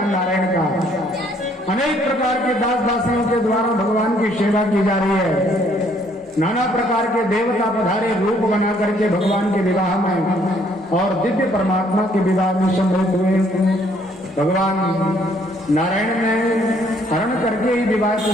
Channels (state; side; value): normal; both; correlation 0.65